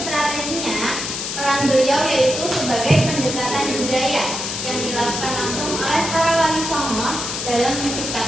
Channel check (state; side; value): noise; left; hiss, 4 dB below the sound